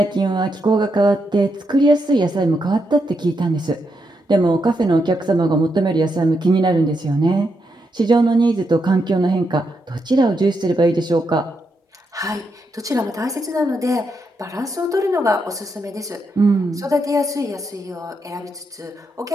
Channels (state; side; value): normal; both; correlation 0.82